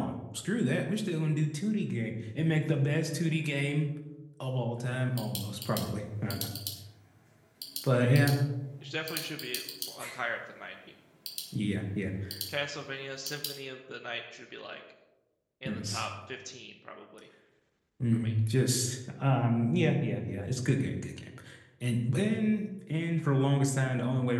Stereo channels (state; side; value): identical; both; correlation 1.00